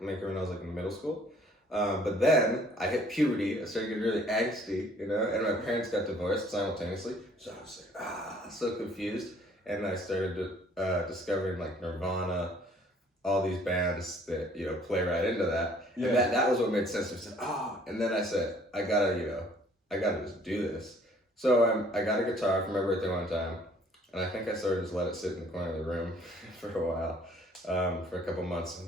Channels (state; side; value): normal; both; correlation 0.58